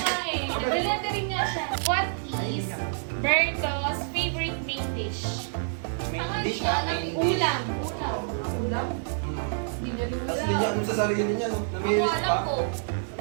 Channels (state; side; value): silent; left; digital silence